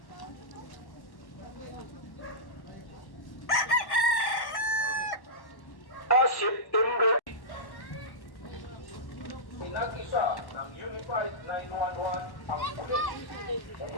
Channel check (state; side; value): late; right; 1.1 ms